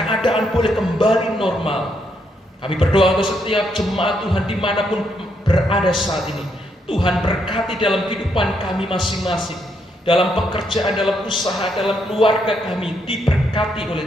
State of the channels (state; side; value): normal; both; correlation 0.76